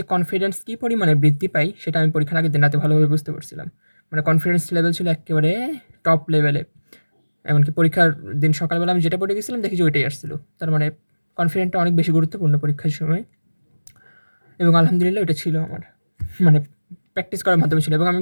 কনফিডেন্স কী পরিমাণে বৃদ্ধি পাই, সেটা আমি পরীক্ষার আগের দিন রাতে ভালোভাবে বুঝতে পারছিলাম। মানে কনফিডেন্স লেভেল ছিল এক্কেবারে টপ লেভেলে। এমনকি পরীক্ষার দিন সকালবেলা আমি যেটা পড়ে গেছিলাম দেখি যে ওইটাই আসছিল। তার মানে কনফিডেন্টটা অনেক বেশি গুরুত্বপূর্ণ পরীক্ষার সময় এবং আলহামদুলিল্লাহ ওইটা ছিল আমার। মানে প্র্যাকটিস করার মাধ্যমে ছিল এবং আমি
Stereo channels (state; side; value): inverted; both; correlation -1.00